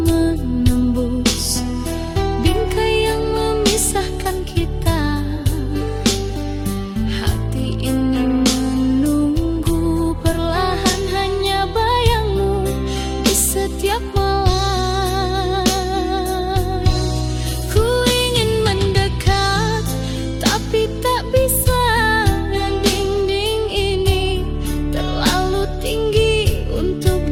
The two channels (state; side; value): identical; both; correlation 1.00